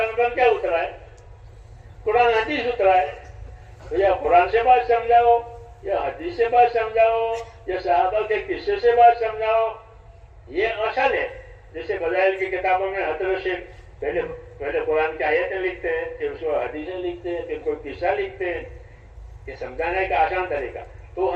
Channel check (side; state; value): both; identical; correlation 1.00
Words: پر کیا اترا ہے؟ قرآن حدیث اترا ہے. تو یا قرآن سے بات سمجھاؤ، یا حدیث سے بات سمجھاؤ، یا صحابہ کے قصے سے بات سمجھاؤ. یہ اصل ہے. جیسے فضائل کی کتابوں میں حضرت سے پہلے قرآن کی آیتیں لکھتے ہیں، پھر اس کو حدیثیں لکھتے ہیں، پھر کوئی قصہ لکھتے ہیں. یہ سمجھانے کا آسان طریقہ. تو